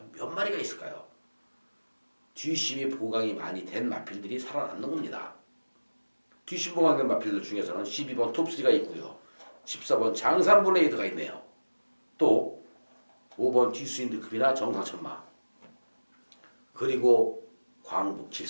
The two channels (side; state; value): both; inverted; correlation -1.00